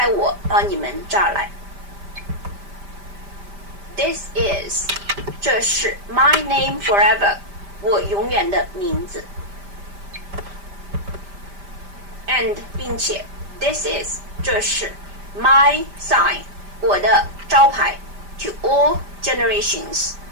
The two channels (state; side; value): late; left; 5.0 ms